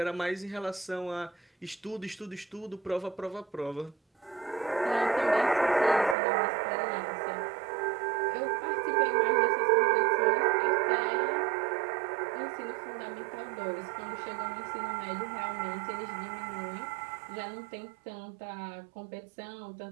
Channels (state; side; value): drops out; left; at 6.2 s